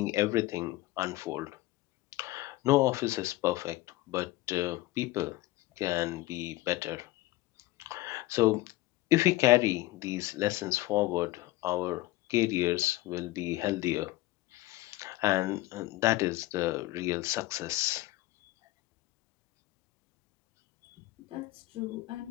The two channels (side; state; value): right; quieter; 18.4 dB